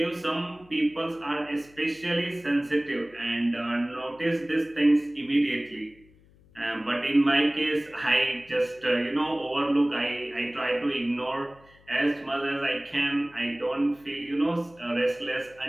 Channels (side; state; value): left; noise; hum, 28 dB below the sound